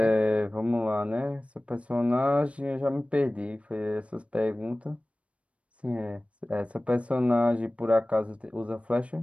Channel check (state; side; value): late; left; 0.063 ms